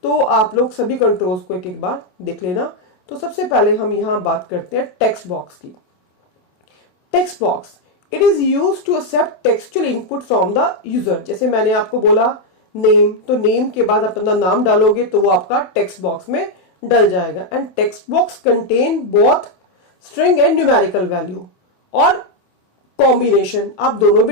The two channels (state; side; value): late; right; 28 ms